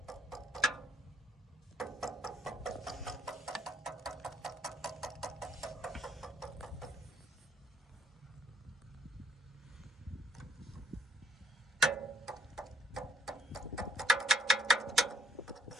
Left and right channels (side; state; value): both; normal; correlation 0.64